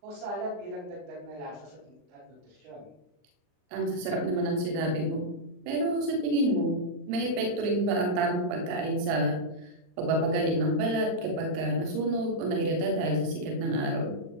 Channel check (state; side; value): late; left; 39 ms